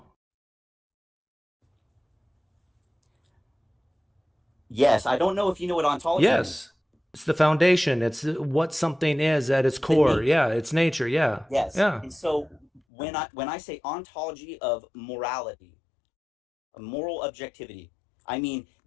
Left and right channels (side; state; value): right; drops out; at 12.8 s